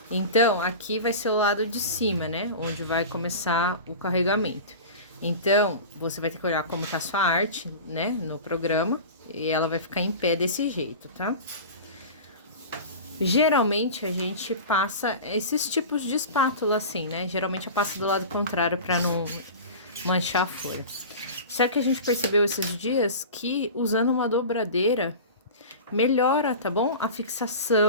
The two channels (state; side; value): inverted; both; correlation -0.33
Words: Então, aqui vai ser o lado de cima, né? Onde vai começar o carregamento. Então, você vai ter que olhar como tá a sua arte, né? No programa. E ela vai ficar em pé desse jeito, tá? Geralmente, a gente passa esses tipos de espátula assim, né? Geralmente, eu passo do lado contrário pra não manchar a folha. Só que a gente percebeu esses dias que usando uma dobradeira melhora, tá bom? A